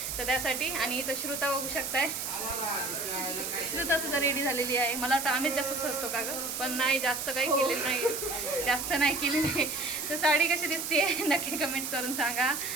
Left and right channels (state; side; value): noise; right; hiss, 4 dB below the sound